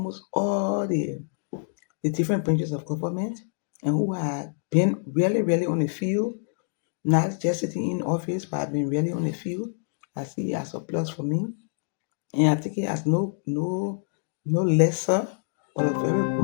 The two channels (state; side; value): silent; right; digital silence